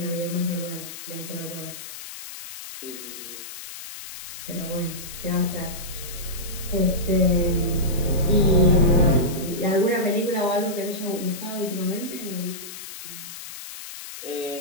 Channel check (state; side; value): noise; left; hiss, 11 dB below the sound